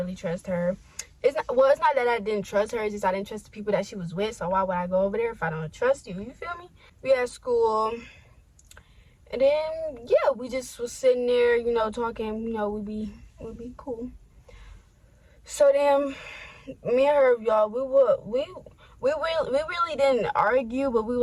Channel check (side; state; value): both; identical; correlation 1.00